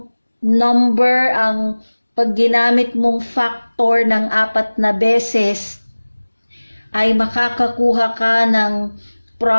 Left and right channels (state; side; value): inverted; both; correlation -1.00